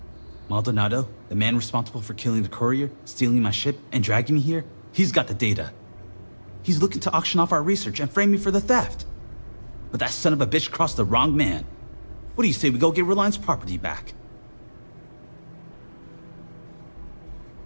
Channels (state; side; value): inverted; both; correlation -1.00